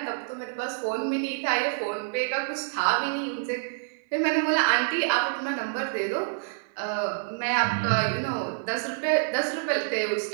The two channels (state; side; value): silent; left; 60 dB below the other